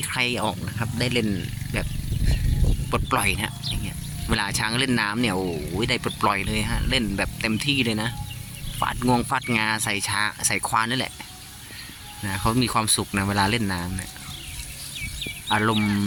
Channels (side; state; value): both; identical; correlation 1.00